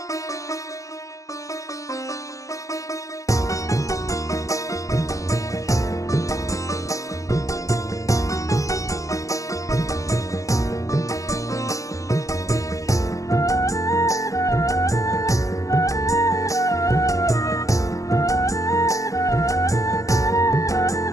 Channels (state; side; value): late; right; 0.16 ms